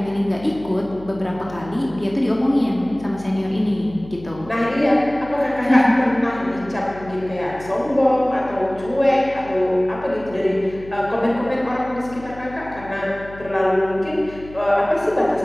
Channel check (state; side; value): noise; left; hum, 17 dB below the sound